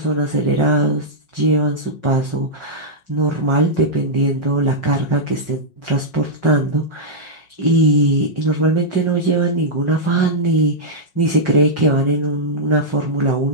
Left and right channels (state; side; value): late; right; 5.5 ms